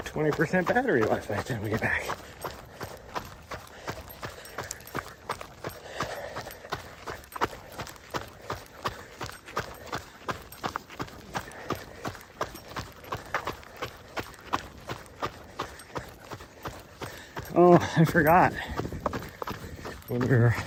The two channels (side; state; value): both; identical; correlation 1.00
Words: 20% battery left by the time we get back. Oh, I forgot. When we were